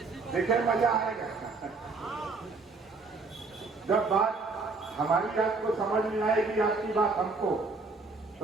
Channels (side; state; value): left; quieter; 4.0 dB